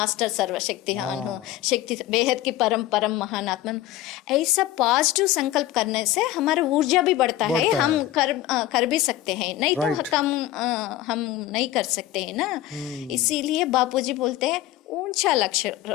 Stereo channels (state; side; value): quieter; right; 14.1 dB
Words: सर्वशक्तिमान हूँ, शक्ति बेहद की परम परम महान आत्मा. ऐसा पॉजिटिव संकल्प करने से हमारा ऊर्जा भी बढ़ता है, हम कर भी सकते हैं, नहीं तो हम नहीं कर सकते हैं ना. इसीलिए बापूजी बोलते हैं ऊंचा लक्ष्य